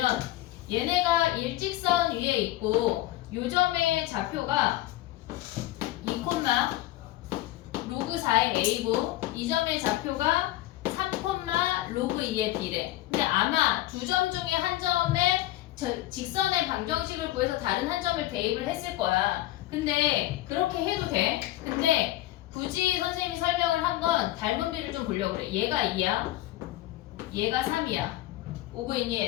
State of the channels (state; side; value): quieter; right; 15.9 dB